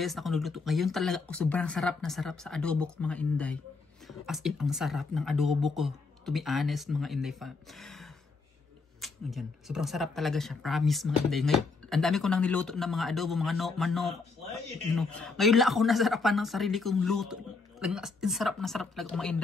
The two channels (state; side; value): quieter; right; 4.2 dB